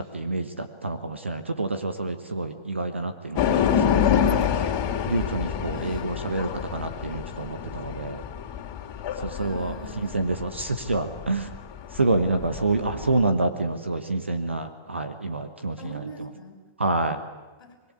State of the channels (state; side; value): inverted; both; correlation -0.47